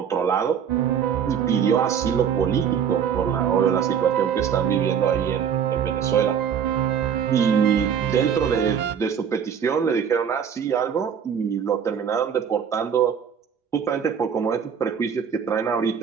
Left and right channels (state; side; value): quieter; left; 7.8 dB